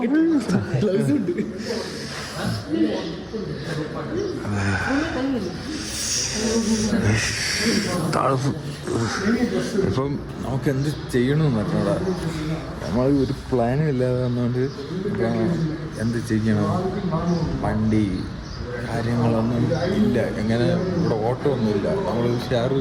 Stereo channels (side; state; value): both; identical; correlation 1.00